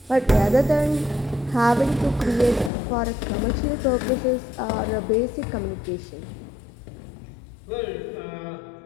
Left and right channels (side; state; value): right; drops out; at 2.7 s